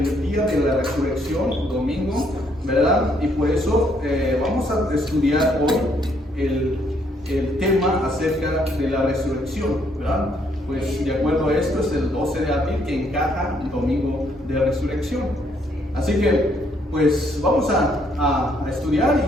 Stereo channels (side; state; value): both; normal; correlation 0.70